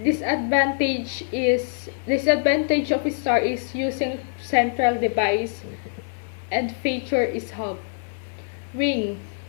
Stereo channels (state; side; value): silent; right; digital silence